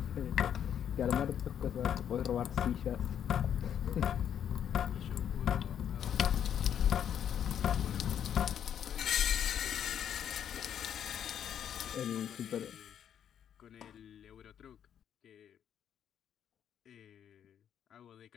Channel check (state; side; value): quieter; right; 9.2 dB